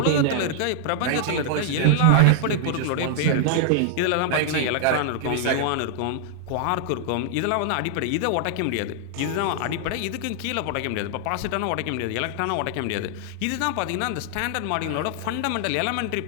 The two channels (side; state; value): both; different; correlation -0.01